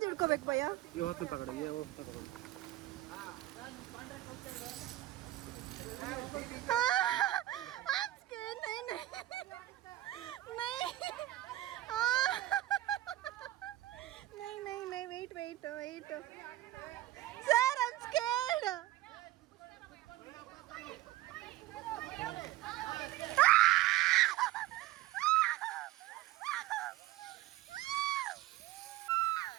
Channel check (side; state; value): left; quieter; 15.7 dB